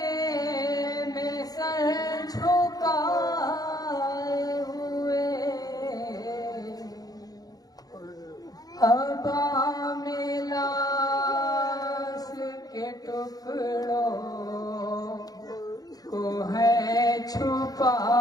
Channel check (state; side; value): late; right; 0.18 ms